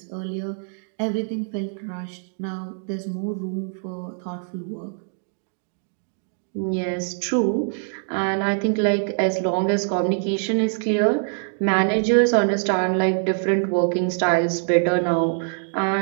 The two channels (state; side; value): silent; left; digital silence